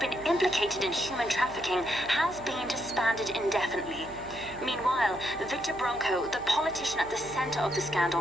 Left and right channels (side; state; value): right; noise; hum, 19 dB below the sound